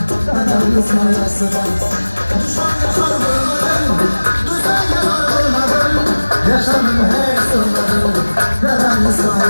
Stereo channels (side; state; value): both; inverted; correlation -1.00